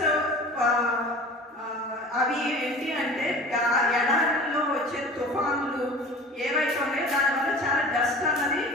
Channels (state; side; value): normal; both; correlation 0.40